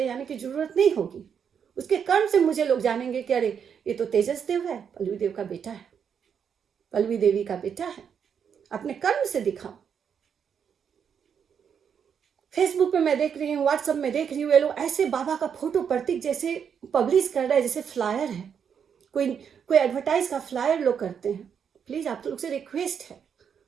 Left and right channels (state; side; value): quieter; left; 7.5 dB